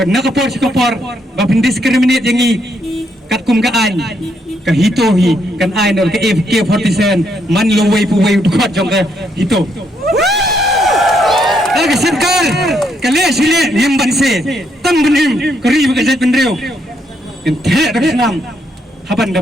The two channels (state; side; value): normal; both; correlation 0.75